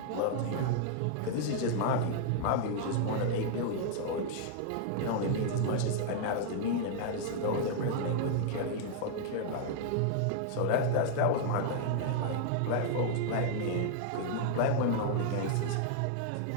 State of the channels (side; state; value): both; different; correlation -0.01